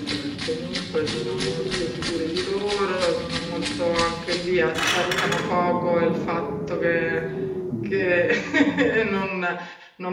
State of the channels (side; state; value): both; identical; correlation 1.00